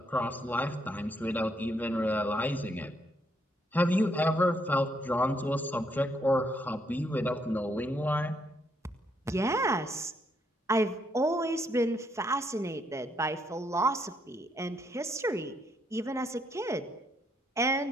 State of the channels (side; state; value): both; normal; correlation 0.74